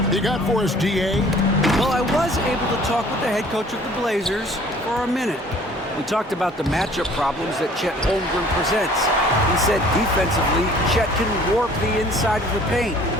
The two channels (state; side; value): normal; both; correlation 0.53